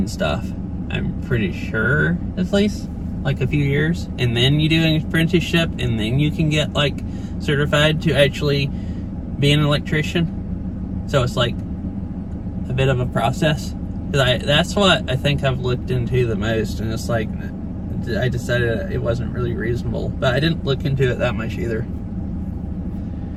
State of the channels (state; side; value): identical; both; correlation 1.00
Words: stuff. I'm pretty sure, at least, like a few years. And then you do an apprenticeship, and then you can get, like, certified to actually be an electrician. So it's like a bit of a process. Because that's what I think I've looked into the most, and it's like I decided it wasn't really reasonable. But I didn't look into it that much either.